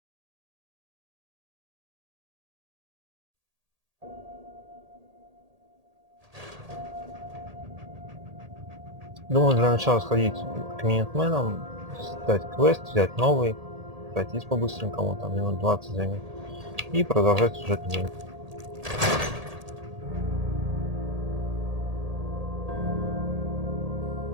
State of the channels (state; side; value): late; left; 1.8 ms